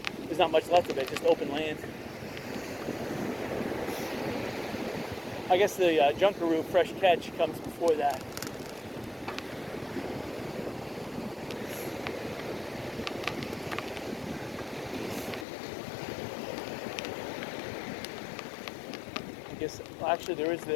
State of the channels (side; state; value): right; drops out; at 15.5 s